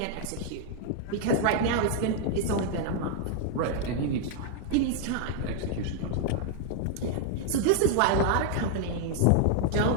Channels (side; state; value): both; different; correlation 0.00